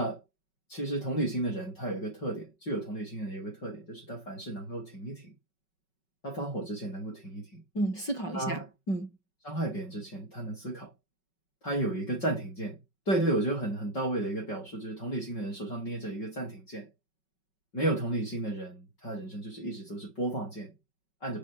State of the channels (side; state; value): right; late; 5.3 ms